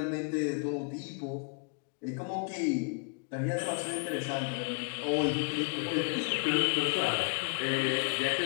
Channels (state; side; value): quieter; right; 38.3 dB